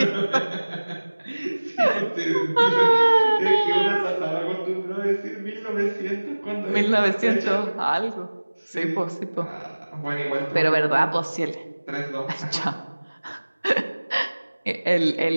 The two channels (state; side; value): inverted; both; correlation -1.00